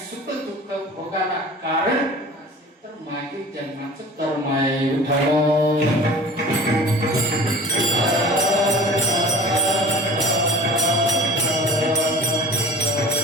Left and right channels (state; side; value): normal; both; correlation 0.42